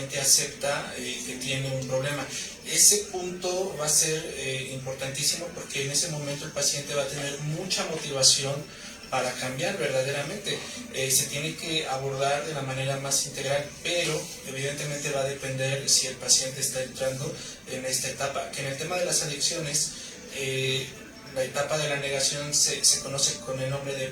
acepta que tiene un problema. Ese punto va a ser importantísimo porque en ese momento el paciente va a tener mucha motivación para cambiar verdaderamente. Se tiene que abordar de la manera más integral, pero evidentemente va a depender si el paciente está entrando en esta etapa, que en el tema de las adicciones, la etapa de la negación se conoce con el nombre de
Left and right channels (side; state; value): both; identical; correlation 1.00